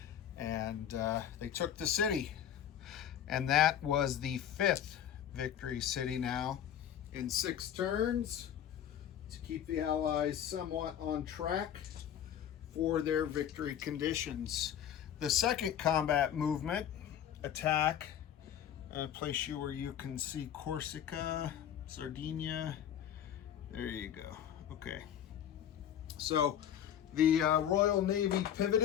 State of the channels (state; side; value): quieter; right; 9.9 dB